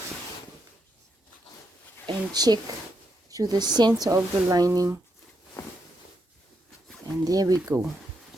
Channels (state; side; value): normal; both; correlation 0.80